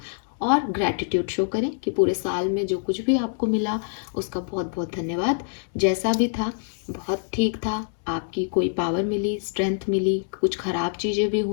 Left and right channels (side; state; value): right; silent; 62 dB below the other